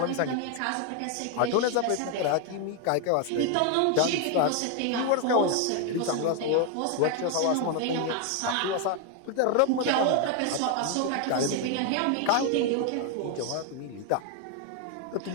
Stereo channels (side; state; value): both; different; correlation 0.01